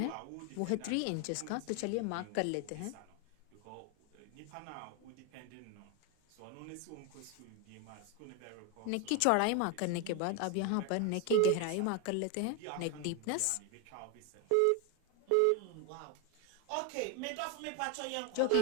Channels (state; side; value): different; both; correlation 0.01